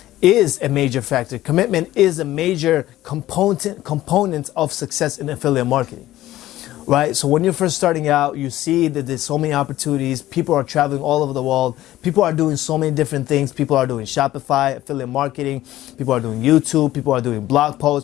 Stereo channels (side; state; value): right; quieter; 14.9 dB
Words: is a major factor. Commitment is a major component of success in affiliate marketing, right? So when you're first starting out, you see that there's so many opportunities. People are traveling all over the world. People are doing so many different things. People are doing Shopify, affiliate marketing. People are doing YouTube. People are doing blog